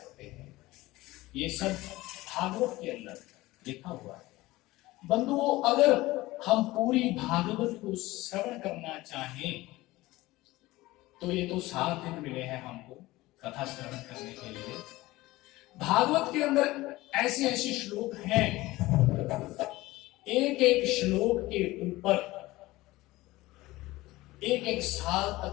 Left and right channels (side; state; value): right; quieter; 18.8 dB